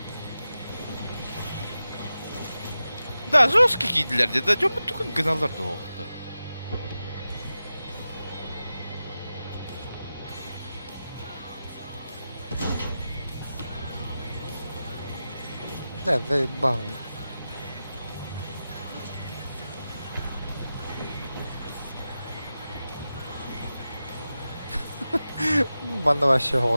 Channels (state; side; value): inverted; both; correlation -0.93